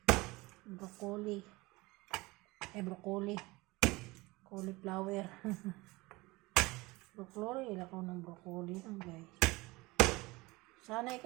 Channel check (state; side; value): quieter; left; 22.2 dB